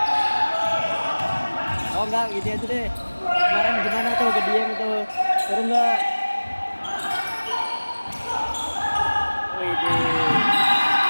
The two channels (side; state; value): both; inverted; correlation -1.00